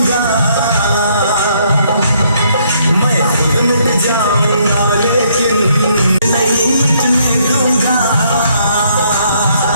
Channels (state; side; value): inverted; both; correlation -0.69